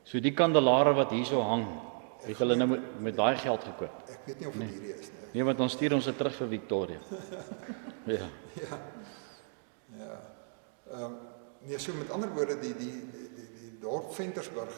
So die kandelare wat hierso hang, het hulle nou met daai geld gekoop. Ek weet nie of dit hierdie is nie. Nee, want dan stuur ons dit terug vir Victoria. Ja. Nee, so met ander woorde, die dorp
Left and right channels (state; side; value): silent; left; digital silence